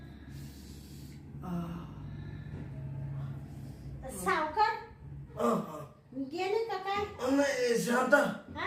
सावकार गेले का काय? नाही शांता,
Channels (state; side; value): identical; both; correlation 1.00